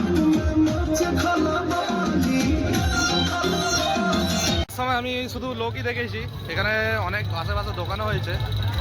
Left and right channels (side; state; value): both; identical; correlation 1.00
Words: শুধু লোকই দেখেছি, এখানে অনেক আশেপাশে দোকানও হয়েছে,